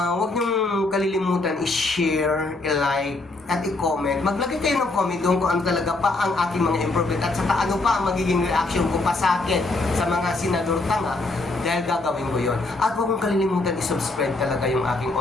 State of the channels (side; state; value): right; quieter; 3.2 dB